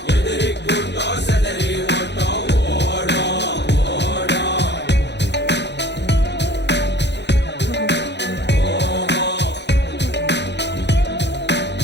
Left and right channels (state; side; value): late; right; 0.50 ms